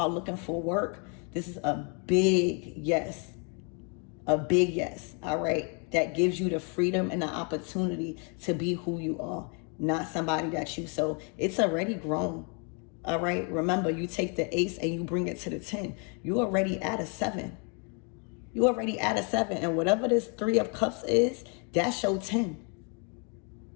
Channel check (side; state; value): right; quieter; 36.9 dB